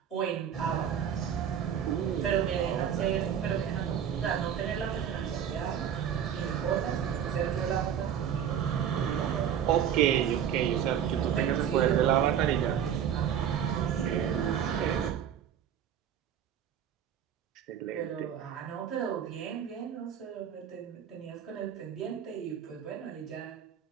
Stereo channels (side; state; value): left; quieter; 9.0 dB